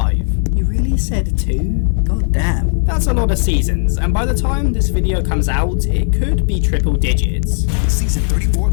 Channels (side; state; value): right; silent; digital silence